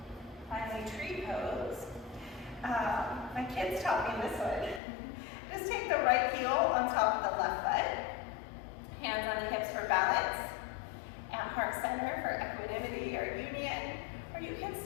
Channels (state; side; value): drops out; right; at 4.8 s